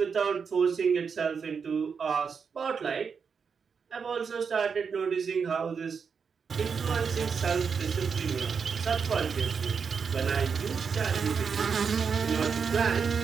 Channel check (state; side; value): quieter; left; 6.0 dB